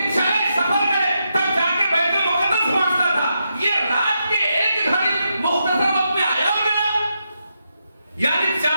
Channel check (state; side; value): inverted; both; correlation -0.84